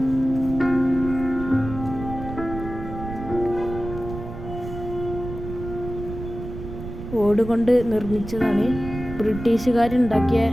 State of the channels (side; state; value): right; noise; rumble, 10 dB below the sound